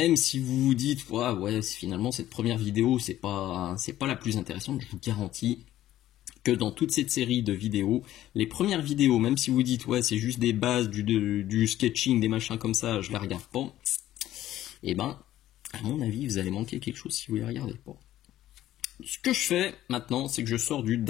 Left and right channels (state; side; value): quieter; right; 13.5 dB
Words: si vous vous dites ouais finalement cette première vidéo c'est pas la plus intéressante, je vous garantis que dans toute cette série de vidéos, les premières vidéos, même si vous dites ouais c'est juste des bases, du sketching, des machins comme ça, je les regarde pas, et ben à mon avis vous allez manquer quelque chose si vous les regardez pas. Ce que je fais maintenant, c'est que je sors du